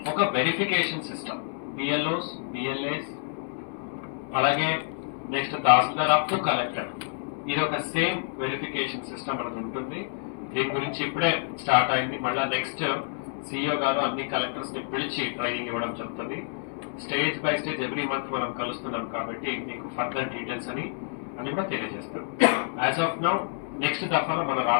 ఒక వెరిఫికేషన్ సిస్టమ్, బిఎల్ఓస్, బిఎల్ఏస్, అలాగే next tahsildar up to collector, ఇది ఒక సేమ్ వెరిఫికేషన్ సిస్టమ్ అనేది ఉంటుంది. దీని గురించి ఇప్పుడే స్టార్ట్ అయింది. మళ్ళీ నెక్స్ట్ సిఇఓ గారు అన్ని కలెక్టర్స్ ని పిలిచి ట్రైనింగ్ ఇవ్వడం జరుగుతుంది. Stage by stage every month మనం కలుస్తున్నాం కాబట్టి మీకు ఫర్దర్ డీటెయిల్స్ అని కూడా తెలియజేస్తాం. యాజ్ ఆఫ్ నౌ నెక్స్ట్ దఫాలో మన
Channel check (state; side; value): silent; right; digital silence